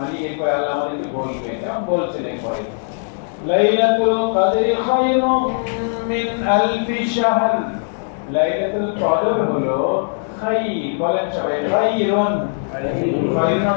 এরপর আল্লাহ আমাদেরকে বলবে, যেমন বলছেন এরপরে লাইলাতুল কদরি খায়রুম মিন আলফি শাহর। লাইলাতুল কদর হলো খায়র, বলেন সবাই খায়রুন। খায়রুন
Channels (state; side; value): silent; right; 66 dB below the other